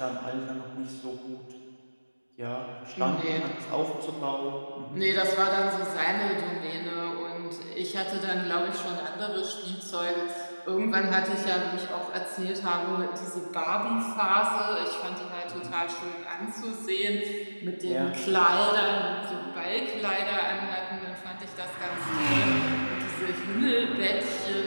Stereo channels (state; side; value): inverted; both; correlation -1.00